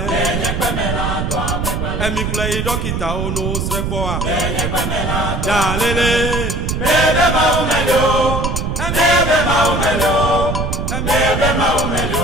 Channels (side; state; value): right; noise; rumble, 2 dB below the sound